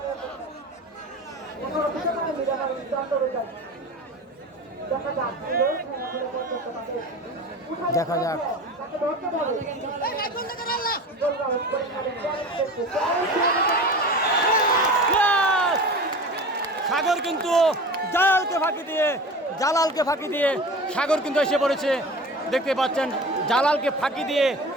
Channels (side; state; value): both; normal; correlation 0.34